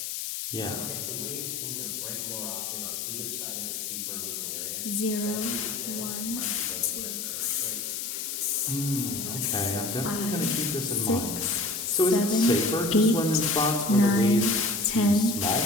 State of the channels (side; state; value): left; noise; hiss, 4 dB below the sound